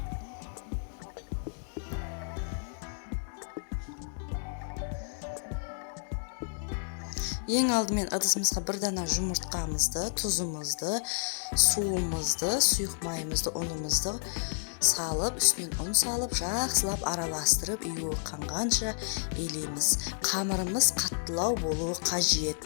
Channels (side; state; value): right; silent; digital silence